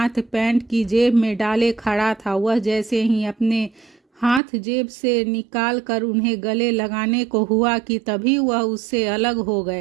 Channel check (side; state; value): left; drops out; at 4.4 s